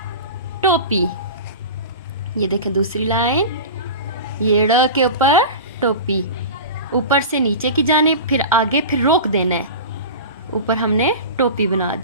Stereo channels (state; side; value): inverted; both; correlation -0.31